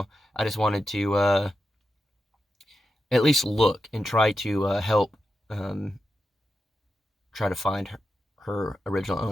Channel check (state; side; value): normal; both; correlation 0.89